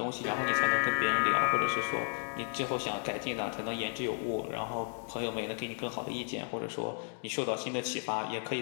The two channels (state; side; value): silent; right; 56 dB below the other